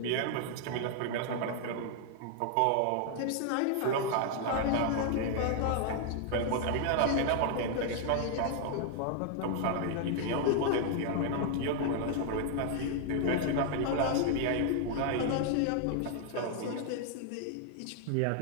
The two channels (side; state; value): both; different; correlation 0.00